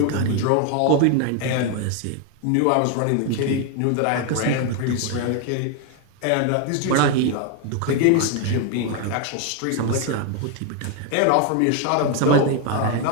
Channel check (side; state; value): both; different; correlation 0.01